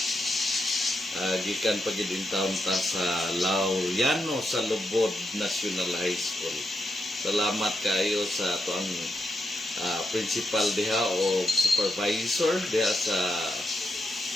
Gikan pagidin taon ta sa Laureano sa Lubod National High School. Salamat kayo sa tuang principal diha o supervisor diha sa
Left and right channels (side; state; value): both; normal; correlation 0.83